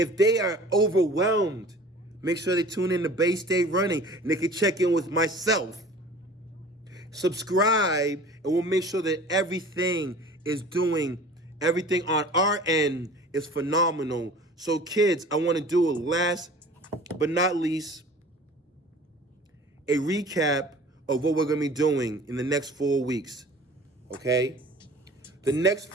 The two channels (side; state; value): both; normal; correlation 0.44